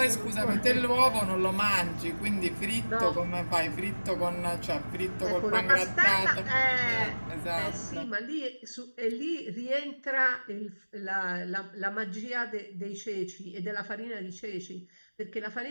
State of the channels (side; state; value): both; inverted; correlation -1.00